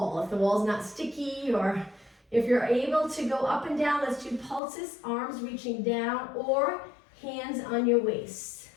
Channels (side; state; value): right; drops out; at 4.6 s